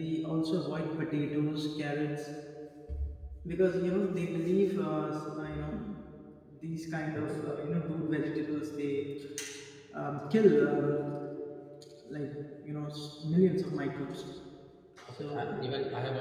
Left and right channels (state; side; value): identical; both; correlation 1.00